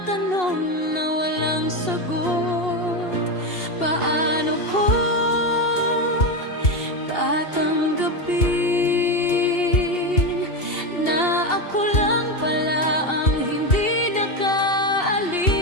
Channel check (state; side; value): late; right; 2.8 ms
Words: tanong na walang sagot. Paano ko tatanggapin na ako lang pala ang hindi nakaalis?